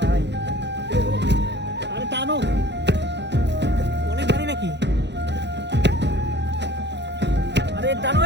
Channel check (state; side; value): late; left; 0.50 ms